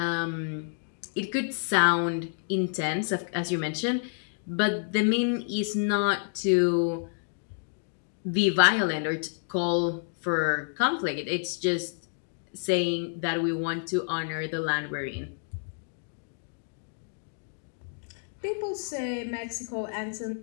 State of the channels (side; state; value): right; silent; digital silence